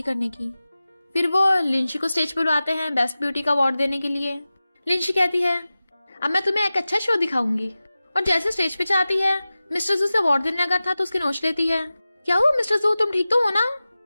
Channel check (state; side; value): inverted; both; correlation -0.96